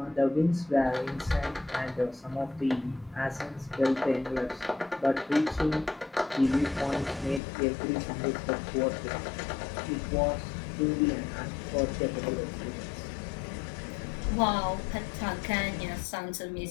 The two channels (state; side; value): drops out; right; at 7.4 s